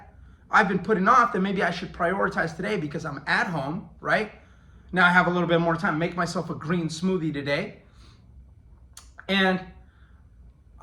I've been putting off that maybe I should prioritize today because I'm at home, right? Now I have a little bit more time. Make myself a green smoothie today. And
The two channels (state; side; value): identical; both; correlation 1.00